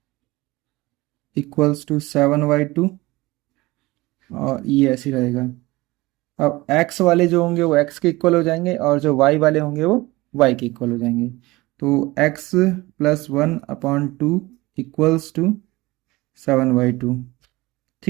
इक्वल्स टू 7/2, और ये ऐसे ही रहेगा। अब x वाले जो होंगे वो x के इक्वल हो जाएंगे और जो y वाले होंगे वो y के इक्वल हो जाएंगे। तो x+1/2 इक्वल्स टू 7/2।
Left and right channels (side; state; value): left; quieter; 20.7 dB